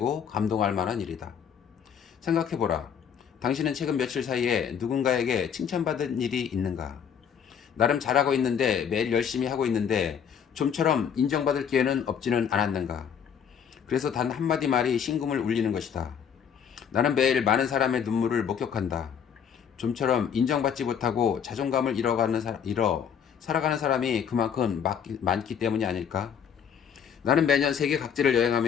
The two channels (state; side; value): quieter; right; 7.8 dB